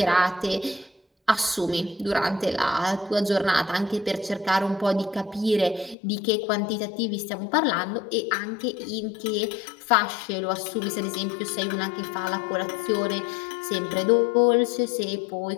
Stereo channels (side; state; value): right; drops out; at 6.0 s